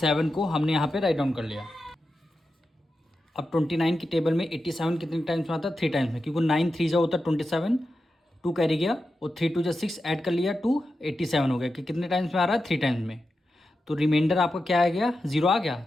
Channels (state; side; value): normal; both; correlation 0.90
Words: को हमने यहाँ पे राइट डाउन कर लिया। अब 29 की टेबल में 87 कितने टाइम्स में आता है, 3 टाइम्स में, क्योंकि 9 3 जा होता है 27, 2 कैरी गया और 3 2 6 ऐड कर लिया 2 87 हो गया कि कितने टाइम्स में आ रहा है 3 टाइम्स में। तो रिमाइंडर आपका क्या आ गया 0 आ गया।